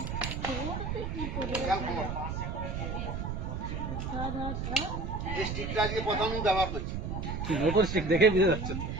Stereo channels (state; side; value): noise; right; rumble, 4 dB below the sound